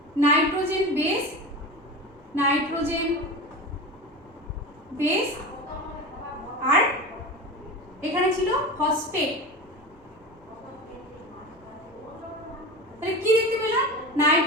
নাইট্রোজেন বেস, আর এখানে ছিল ফসফেট। তাহলে কি দেখতে পেলাম?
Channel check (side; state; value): both; normal; correlation 0.28